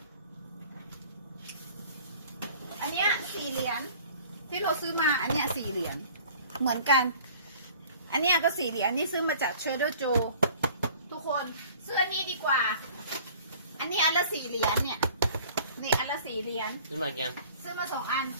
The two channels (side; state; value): both; inverted; correlation -0.49